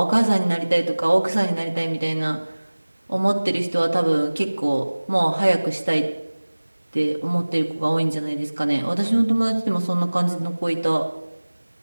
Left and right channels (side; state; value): both; inverted; correlation -1.00